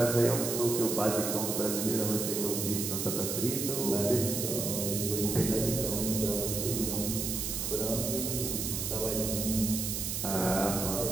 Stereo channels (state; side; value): noise; right; hiss, 2 dB below the sound